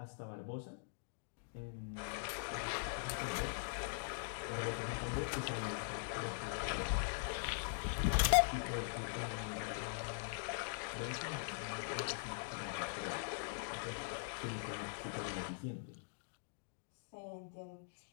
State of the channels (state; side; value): silent; right; digital silence